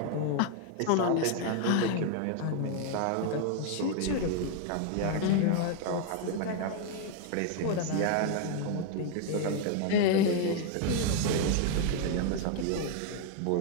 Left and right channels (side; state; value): both; different; correlation 0.00